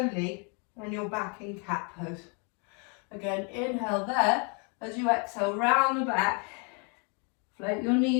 and you're back in cat pose. Again, inhale there. As you exhale, round the back, float your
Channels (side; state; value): right; quieter; 36.2 dB